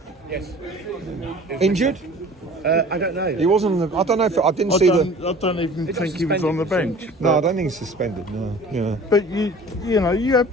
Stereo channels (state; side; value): normal; both; correlation 0.45